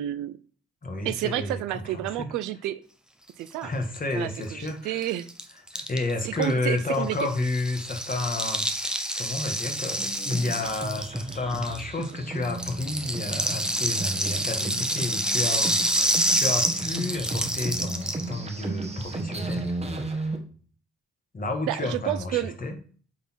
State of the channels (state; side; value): normal; both; correlation 0.36